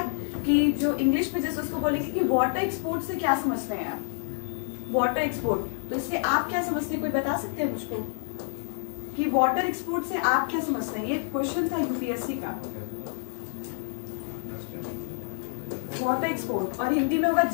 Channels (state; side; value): silent; right; digital silence